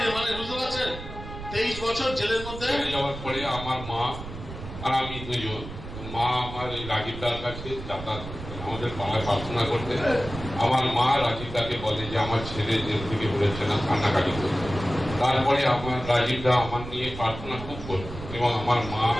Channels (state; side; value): noise; right; rumble, 10 dB below the sound